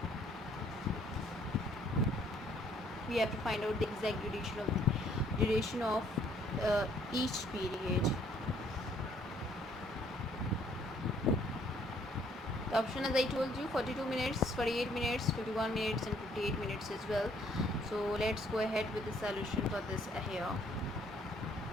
We have to find out the exact duration of each period. The option, as I told you, 42 minutes, 48 minutes, 51 minutes and 58 minutes as well. So let's go ahead with the solution for this here.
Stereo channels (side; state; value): both; normal; correlation 0.64